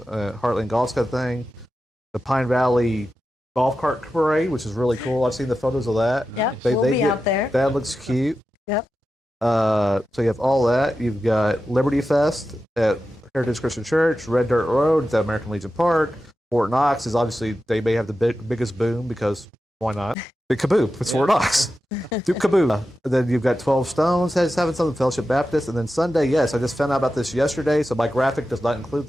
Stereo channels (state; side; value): normal; both; correlation 0.91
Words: Golf's got a thing. The Pine Valley Golf Cart Parade, which is really cool. I've seen the photos of that. Yep, we'll be out there. That looks cute. Yep. So you have all that. You've got Liberty Fest at Heritage Christian Church, Red Dirt Road at American Legion Park. Fort Knox is obviously, they may have the biggest boom because Why not? The Kaboop. It's Fort Knox. Do Kaboop. Then you've got 12 Stones having something, Fellowship Baptist. And then Sunday, yes, I just found out about this yesterday, so my graphic does not include